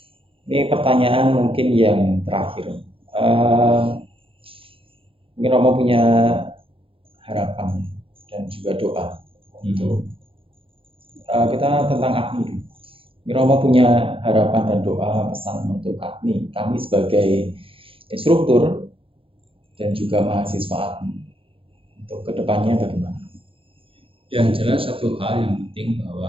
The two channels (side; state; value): left; late; 0.26 ms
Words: Ini pertanyaan mungkin yang terakhir. Mungkin Romo punya harapan dan juga doa untuk kita tentang ADMI. Mungkin Romo punya harapan dan doa, pesan untuk ADMI, kami sebagai instruktur dan juga mahasiswa ADMI. Untuk kedepannya bagaimana? Yang jelas satu hal yang penting